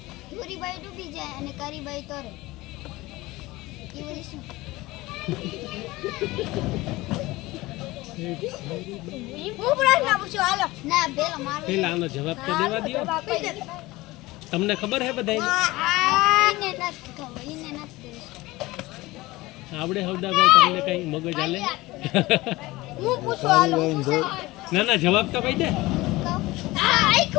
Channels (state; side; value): quieter; right; 19.8 dB